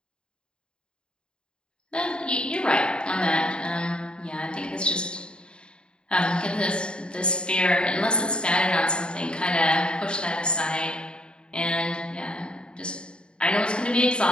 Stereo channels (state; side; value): late; right; 0.052 ms